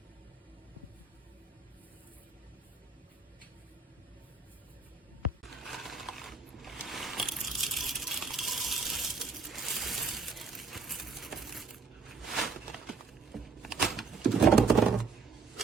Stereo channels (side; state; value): left; quieter; 4.8 dB